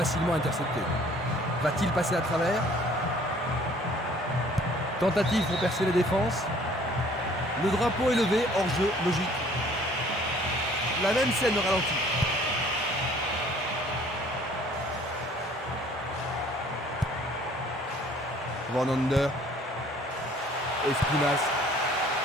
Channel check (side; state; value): both; normal; correlation 0.55